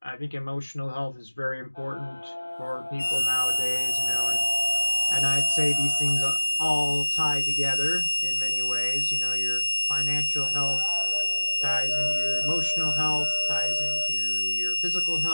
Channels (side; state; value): both; inverted; correlation -1.00